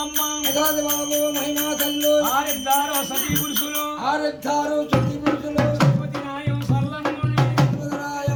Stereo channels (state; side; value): identical; both; correlation 1.00